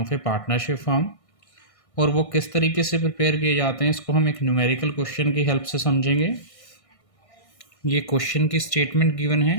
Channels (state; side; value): late; right; 1.6 ms